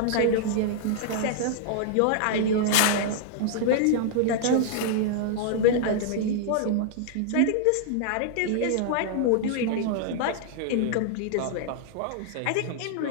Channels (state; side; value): different; both; correlation 0.00